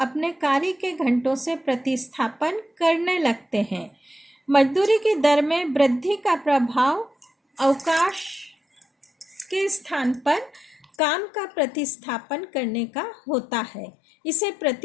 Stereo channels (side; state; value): right; drops out; at 10.9 s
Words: अपने कार्य के घंटों से प्रतिस्थापन करने लगते हैं। मजदूरी की दर में वृद्धि का प्रभाव अवकाश के स्थान पर काम का प्रतिस्थापन करने का होता है। इसे